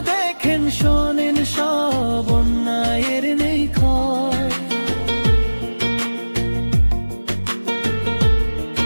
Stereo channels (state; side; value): inverted; both; correlation -1.00